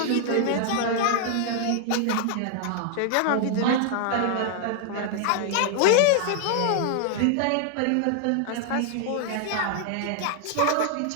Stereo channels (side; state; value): both; different; correlation 0.00